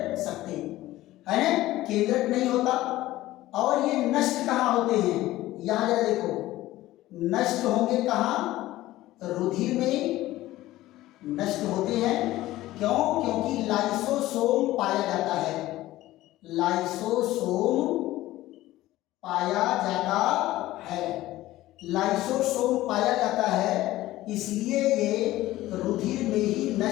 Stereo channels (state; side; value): quieter; right; 16.2 dB